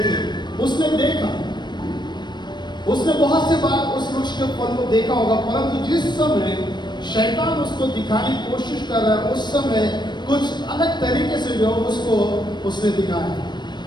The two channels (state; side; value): late; right; 0.22 ms